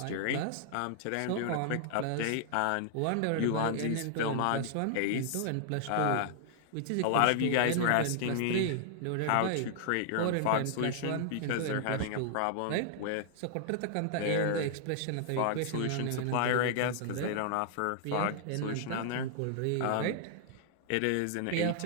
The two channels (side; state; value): both; different; correlation -0.01